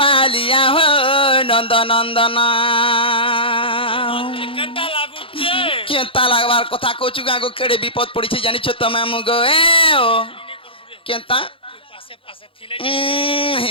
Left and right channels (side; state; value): right; late; 0.26 ms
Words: হো নন্দ নন্দন কেনতা লাগবার কথা কচু গাগো কেড়ে বিপদ পড়িছে জানিছ তুমি মুগো এ ও কেনতা